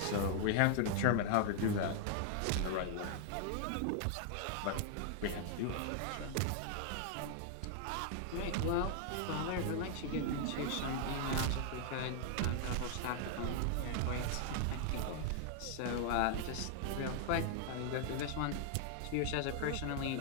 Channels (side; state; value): both; different; correlation 0.00